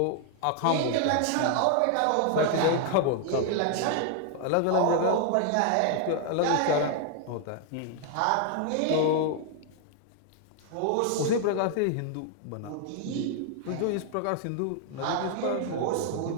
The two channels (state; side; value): different; both; correlation 0.00